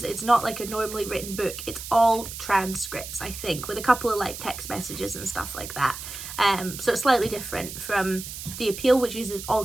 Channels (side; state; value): right; noise; hiss, 10 dB below the sound